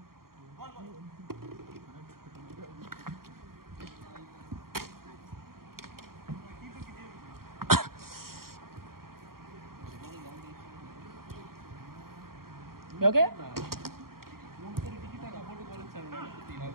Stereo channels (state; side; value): late; left; 0.93 ms